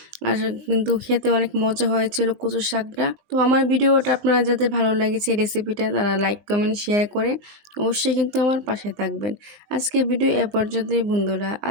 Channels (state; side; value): late; left; 19 ms